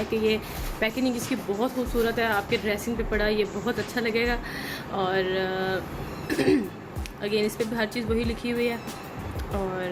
कि ये पैकेजिंग इसकी बहुत खूबसूरत है। आपके ड्रेसिंग पे पड़ा ये बहुत अच्छा लगेगा। और अगेन इस पर भी हर चीज़ वही लिखी हुई है।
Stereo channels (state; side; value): identical; both; correlation 1.00